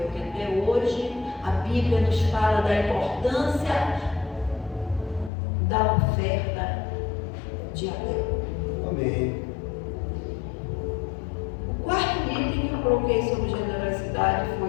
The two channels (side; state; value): right; drops out; at 5.3 s